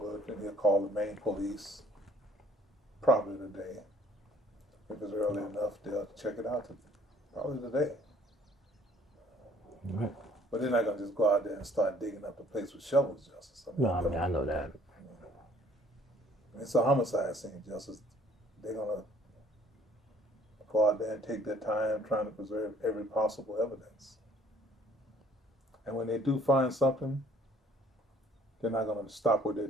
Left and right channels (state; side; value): normal; both; correlation 0.58